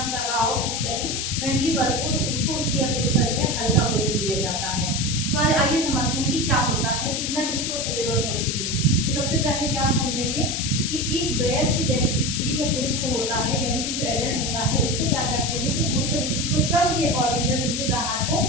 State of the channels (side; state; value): left; noise; hiss, 2 dB below the sound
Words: कर रहा हो फिजिकली, मेंटली वर्क हो, तो उसको उसकी अपेक्षा जो है हल्का भोजन दिया जाता है। तो आइए समझते हैं कि क्या होता है, कितना किसको जरूरत होती है। तो सबसे पहले क्या हम समझेंगे कि एक वयस्क स्त्री या पुरुष जो होता है, यानी कि जो एडल्ट होता है, उसको क्या करते हैं कि पुरुष और स्त्री को श्रम के अकॉर्डिंग जो संतुलित आहार को